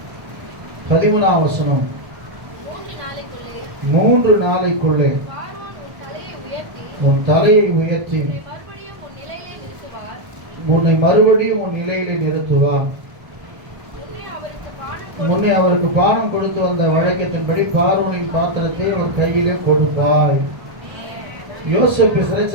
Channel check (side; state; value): left; late; 1.2 ms